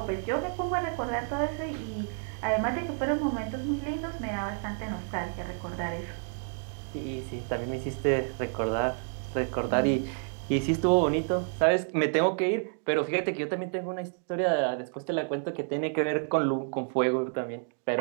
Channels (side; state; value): left; silent; 57 dB below the other